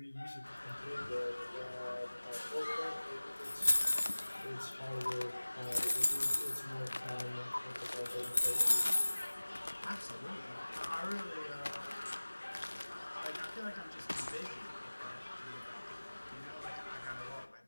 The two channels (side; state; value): both; inverted; correlation -1.00